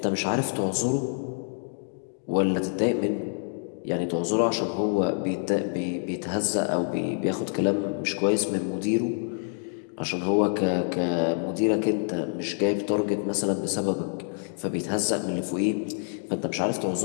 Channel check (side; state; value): right; silent; digital silence